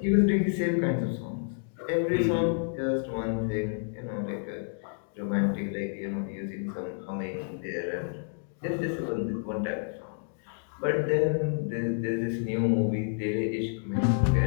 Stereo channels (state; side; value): silent; right; digital silence